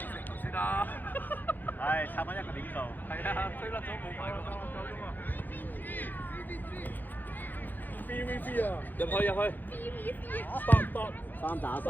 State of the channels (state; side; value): late; right; 0.087 ms